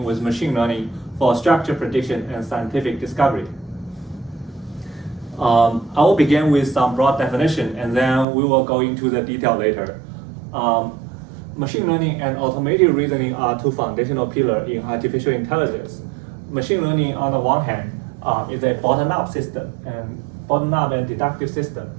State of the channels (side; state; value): left; drops out; at 8.2 s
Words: with machine learning for structure prediction and scientific discovery. I will begin with some broad definition and then we will go into the detail later. Machine learning and automated reasoning are two foundational pillars in artificial intelligence. Machine learning on the one hand is a bottom-up system and bottom-up and deductive system.